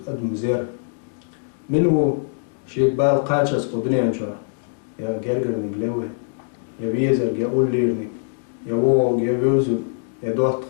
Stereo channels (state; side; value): silent; right; digital silence